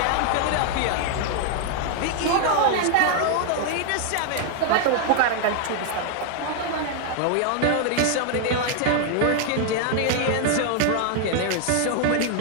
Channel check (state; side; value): different; both; correlation 0.00